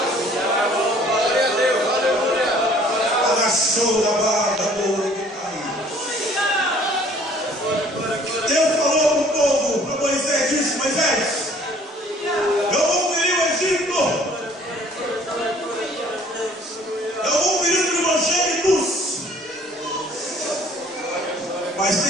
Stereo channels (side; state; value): both; normal; correlation 0.55